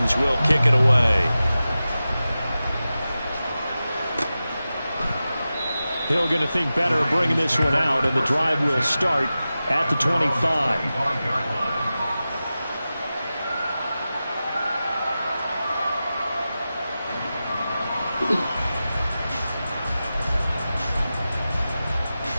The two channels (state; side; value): inverted; both; correlation -0.94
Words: will kick it away. Hill going to think better of bringing this one out, and the drive will start at the 25.